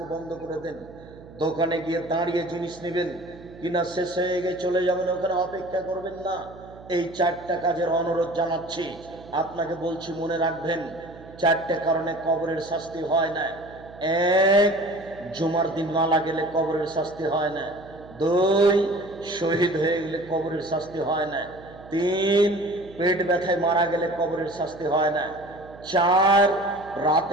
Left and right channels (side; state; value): right; noise; hum, 19 dB below the sound